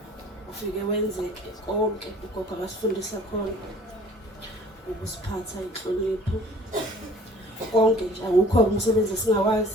Ufike wenzeke konke ugogo abasifundisa khona. Ukusiphatha inhlonipho. Konke nje akukho umsebenzi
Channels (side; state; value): both; normal; correlation 0.51